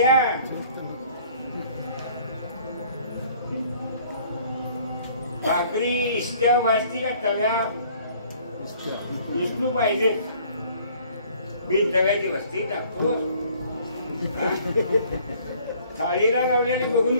भाकरी इष्ट्या वाजती का तव्या? विष्णू पाहिजे, बिन तव्याची वस्ती टाकतो. थाळीला लावलेली बघून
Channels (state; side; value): inverted; both; correlation -0.57